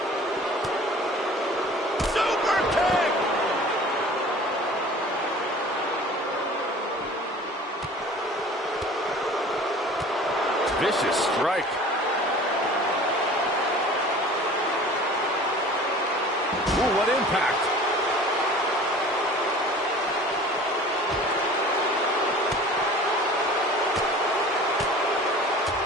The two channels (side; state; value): both; normal; correlation 0.44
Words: Super kick! Vicious strike. Ooh, what impact.